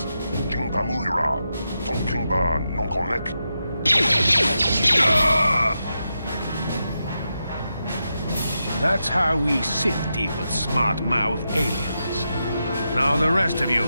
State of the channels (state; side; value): inverted; both; correlation -0.87